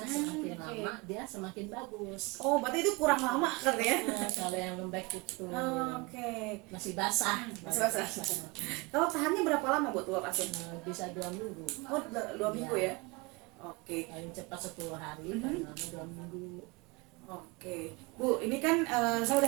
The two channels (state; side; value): quieter; left; 25.7 dB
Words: semakin oke. lama dia semakin bagus. Oh, berarti itu kurang lama kan ya? Kalau yang lembek itu Oke. masih basah, Masih basah. Kalau tahannya berapa lama Bu telur asin? Bisa 2 minggu. Oh, 2 minggu ya? Oke. Paling cepat 10 hari, paling lama 2 minggu. Oke, Bu, ini kan saya